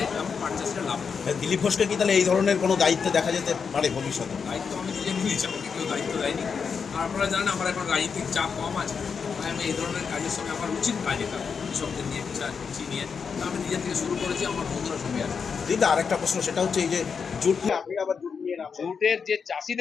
এবং পাট চাষটা লাভ হয়। দিলীপ ঘোষকে কি তাহলে এই ধরনের কোনো দায়িত্ব দেখা যেতে পারে ভবিষ্যতে? দায়িত্ব আমি নিজে নিয়েছি, আমাকে কেউ দায়িত্ব দেয়নি। আর আপনারা জানেন আমার এখন রাজনৈতিক চাপ কম আছে, তাই আমি এই ধরনের কাজের সঙ্গে আমার উচিত কাজ এটা কৃষকদের নিয়ে কৃষি নিয়ে আমি নিজের থেকে শুরু করেছি, আমার বন্ধুরা সঙ্গে আছে। দিদা আরেকটা প্রশ্ন, সেটা হচ্ছে এই যে জুট নিয়ে আপনি আবার জুট নিয়ে নামছেন। জুটের যে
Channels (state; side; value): quieter; right; 6.0 dB